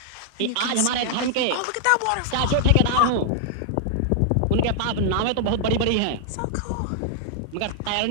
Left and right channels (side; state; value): both; different; correlation 0.00